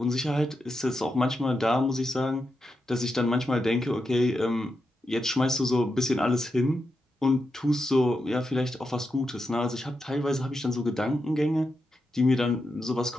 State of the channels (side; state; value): both; normal; correlation 0.86